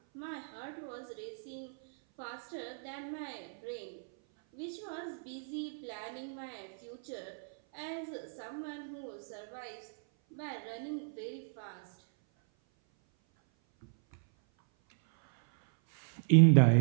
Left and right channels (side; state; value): left; silent; 54 dB below the other